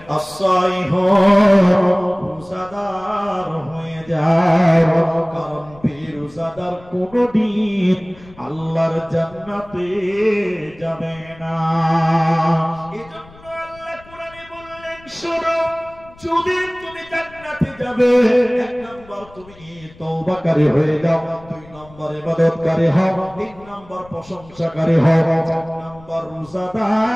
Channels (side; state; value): left; noise; rumble, 23 dB below the sound